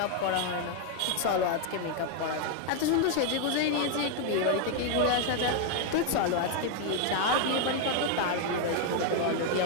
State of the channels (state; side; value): different; both; correlation 0.00